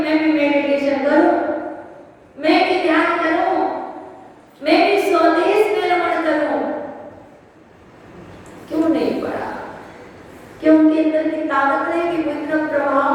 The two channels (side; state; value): both; identical; correlation 1.00